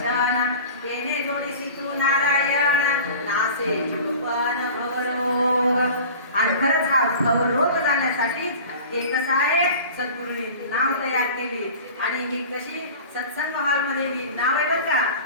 तेने जोडीसी तू नारायण, नासे जीवपण भवरोग. आणि खरंच हा भवरोग जाण्यासाठीच हे कसं आहे, सद्गुरूंनी नाव तयार केली. आणि ही कशी सत्संग हॉलमध्ये ही नाव आहे बरं का.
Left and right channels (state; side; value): inverted; both; correlation -0.39